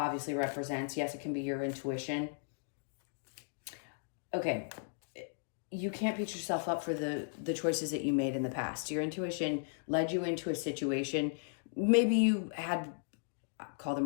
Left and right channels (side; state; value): right; silent; digital silence